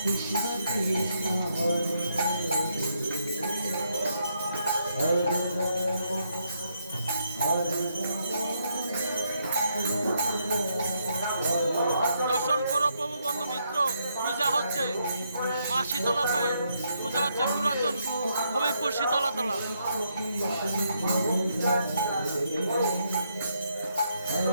দর্শন করো প্রভু বন্ধু মিত্র, পূজা হচ্ছে মা শীতলা পায়ে, পূজা হচ্ছে পুরাতন হবিবপুর শীতলাতলা।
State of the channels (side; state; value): both; inverted; correlation -0.76